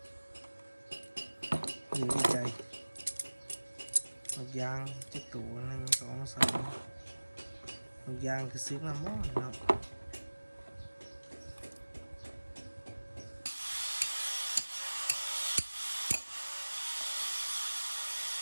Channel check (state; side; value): inverted; both; correlation -1.00